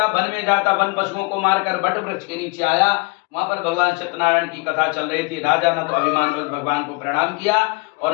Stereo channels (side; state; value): right; quieter; 28.0 dB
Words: वन में जाता, वन पशुओं को मारकर बट वृक्ष के नीचे आया, वहां पर भगवान सत्यनारायण की कथा चल रही थी। राजा न तो अभिमान भगवान को प्रणाम किया